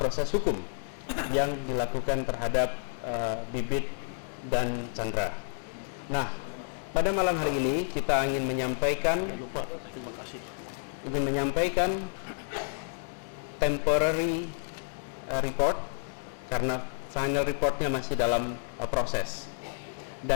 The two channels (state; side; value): silent; right; digital silence